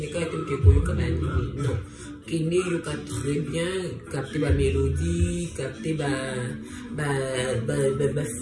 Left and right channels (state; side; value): identical; both; correlation 1.00